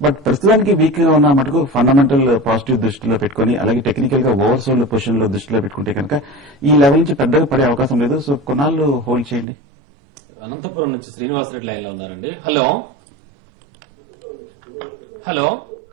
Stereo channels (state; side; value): drops out; left; at 9.5 s